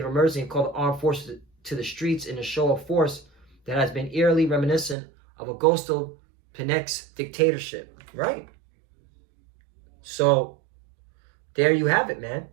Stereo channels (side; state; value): left; drops out; at 5.0 s